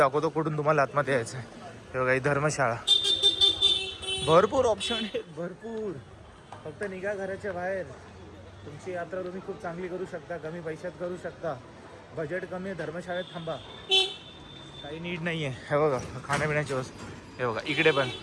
कुठून तुम्हाला आतमध्ये यायचं आहे. हे बघा ही धर्मशाळा. भरपूर ऑप्शन आहेत, भरपूर. फक्त निघा घराच्या बाहेर. तुमची यात्रा तुम्ही खूप चांगली करू शकता, कमी पैशात करू शकता. बजेट कमी आहे, धर्मशाळेत थांबा, काही नीड नाही आहे. हे बघा खाण्यापिण्याची वस्तू. हे बघा इकडे पण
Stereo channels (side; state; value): both; identical; correlation 1.00